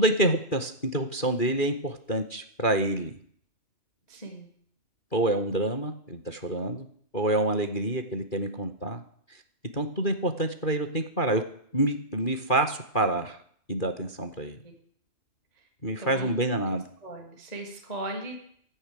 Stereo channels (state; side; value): late; right; 2.4 ms